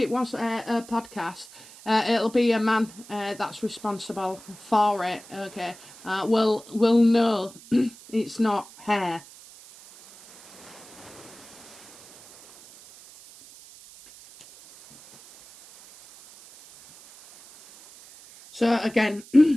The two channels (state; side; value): noise; right; hiss, 21 dB below the sound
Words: was a podcast, it'll be a man that's responsible for it, okay? Will know it's not hair. So again,